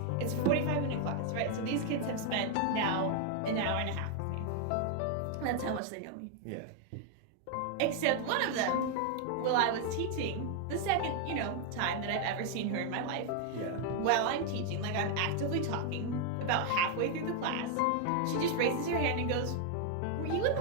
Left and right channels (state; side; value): different; both; correlation 0.00